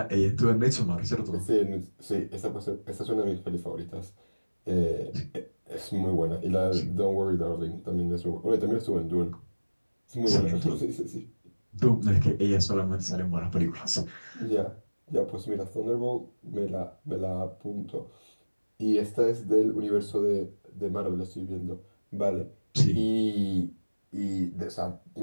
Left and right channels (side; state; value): both; inverted; correlation -1.00